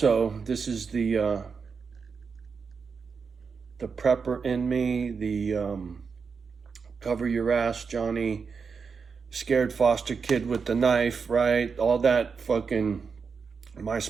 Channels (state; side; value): quieter; left; 5.5 dB